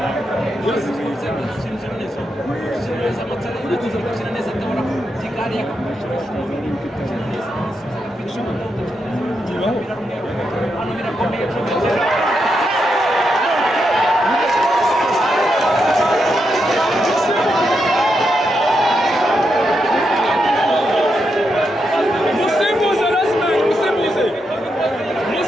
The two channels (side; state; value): both; normal; correlation 0.83